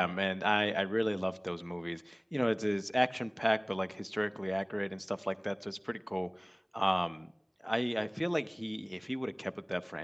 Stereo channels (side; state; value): both; identical; correlation 1.00